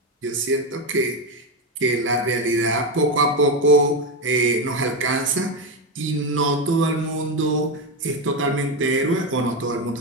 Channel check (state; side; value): normal; both; correlation 0.11